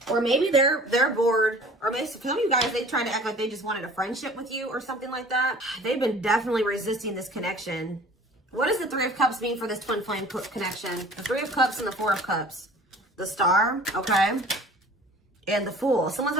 or maybe they're bored, or maybe some of you guys, they try to act like they just wanted a friendship with you or something like that. They've been definitely resisting this connection. What does the Three of Cups mean for this twin flame connection? The Three of Cups and the Four of Cups. The Star, okay. And the Fool. Someone's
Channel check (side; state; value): both; normal; correlation 0.47